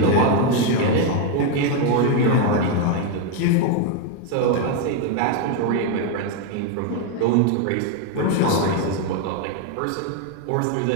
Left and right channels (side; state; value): both; different; correlation 0.01